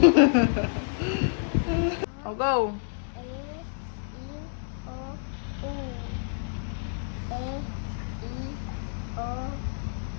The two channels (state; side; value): silent; right; 59 dB below the other